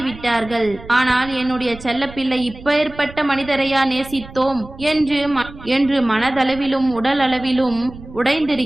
ஆனால் என்னுடைய செல்ல பிள்ளை இப்பேற்பட்ட மனிதரையா நேசித்தோம் என்று மனதளவிலும் உடல் அளவிலும்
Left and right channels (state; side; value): noise; right; rumble, 17 dB below the sound